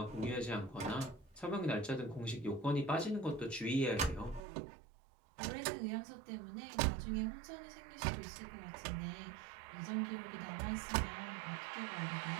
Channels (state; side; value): drops out; left; at 4.5 s